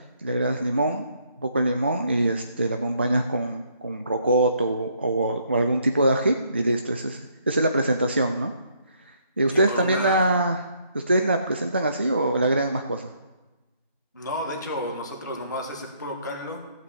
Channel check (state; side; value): inverted; both; correlation -0.69